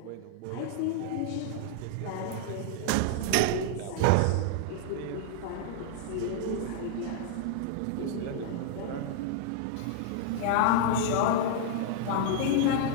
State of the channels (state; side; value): different; both; correlation -0.01